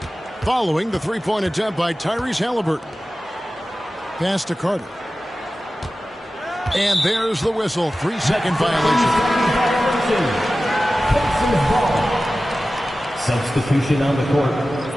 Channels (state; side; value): normal; both; correlation 0.95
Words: following the three-point attempt by Tyrese Halliburton. Pass to Carter. And there's the whistle. 3-second violation. Substitution on the court.